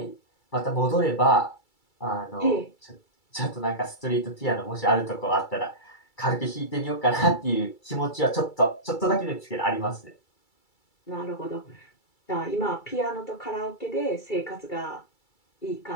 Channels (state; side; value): late; right; 2.3 ms